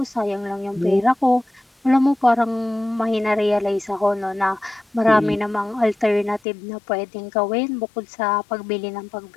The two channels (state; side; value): drops out; right; at 6.4 s